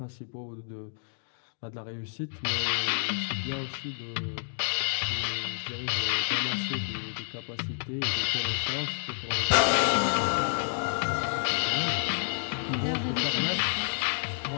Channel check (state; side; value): silent; right; digital silence